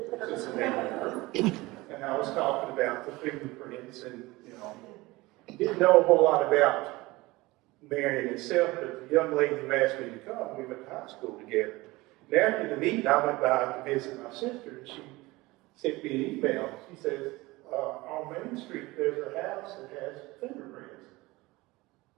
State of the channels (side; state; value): left; quieter; 21.0 dB